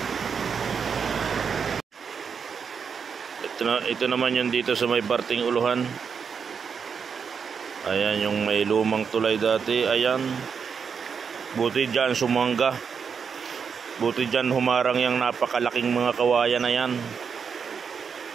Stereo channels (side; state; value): left; quieter; 6.3 dB